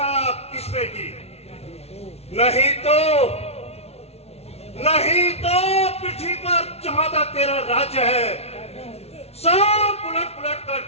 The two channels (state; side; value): late; right; 0.30 ms